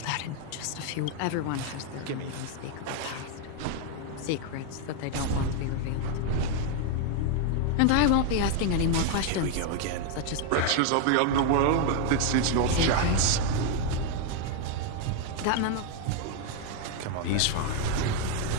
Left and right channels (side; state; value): both; different; correlation 0.01